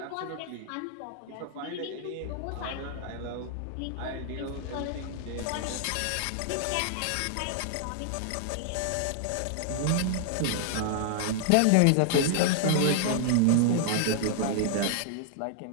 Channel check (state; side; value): different; both; correlation 0.00